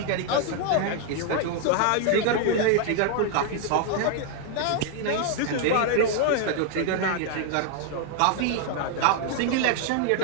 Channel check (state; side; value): different; both; correlation 0.00